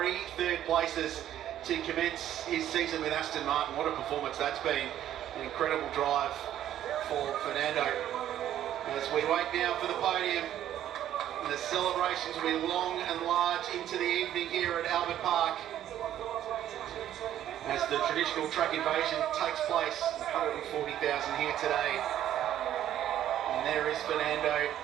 third places to commence his season with Aston Martin. What a performance that's been. An incredible drive for Fernando. As we wait now for the podium, the celebrations will be long and large into the evening here at Albert Park, as the traditional track invasion takes place. 140,000 here today. And there is Fernando.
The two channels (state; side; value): quieter; left; 11.6 dB